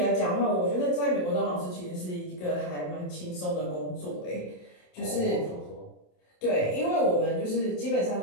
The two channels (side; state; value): right; late; 28 ms